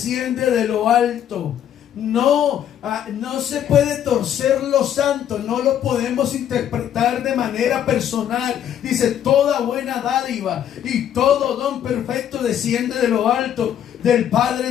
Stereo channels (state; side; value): quieter; right; 10.0 dB